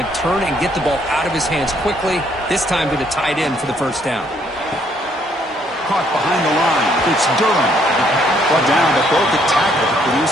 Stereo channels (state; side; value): normal; both; correlation 0.68